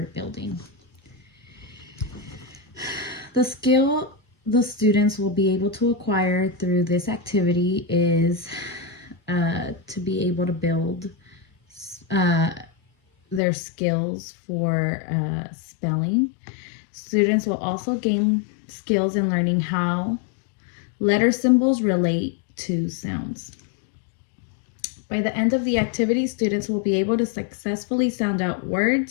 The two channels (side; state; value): right; drops out; at 13.4 s